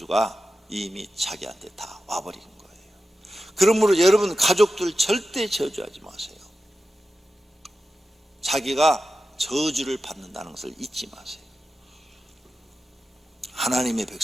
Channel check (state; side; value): normal; both; correlation 0.92